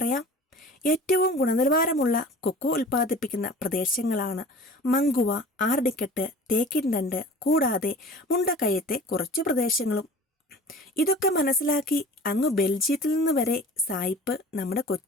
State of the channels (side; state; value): both; normal; correlation 0.42